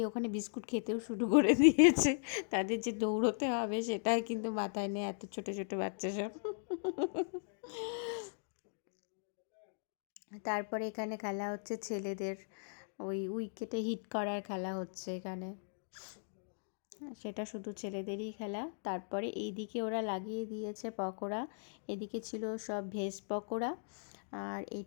ওখানে বিস্কুট খেতেও শুরু করে দিয়েছে, তাদের যে দৌড়তে হবে সেটাই কিন্তু মাথায় নেই, এত ছোট ছোট বাচ্চা সব। তারপরে এখানে খেলা হচ্ছে ছেলেদের, ওই উইকেটে হিট করার খেলা হচ্ছে এখানে, সেটা শুধু ছেলেদেরই খেলা। তারপরে এইদিকে ওরা লাগিয়ে দিয়েছে পকোড়া, এদিকে ছিল সব ভেজ পকোড়া, আর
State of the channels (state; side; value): silent; right; digital silence